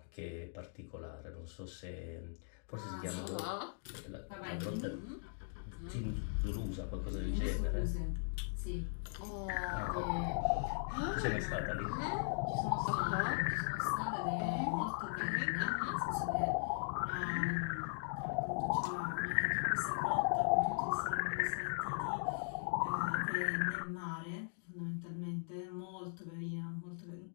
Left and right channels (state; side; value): silent; right; digital silence